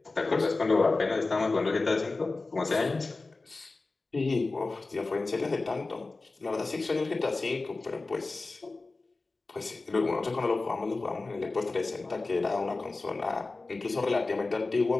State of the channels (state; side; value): quieter; right; 3.5 dB